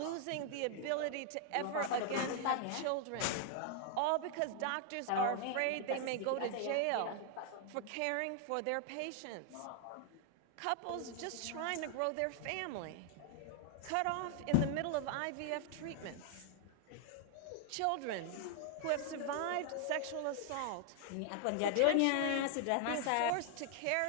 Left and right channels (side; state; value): both; different; correlation 0.00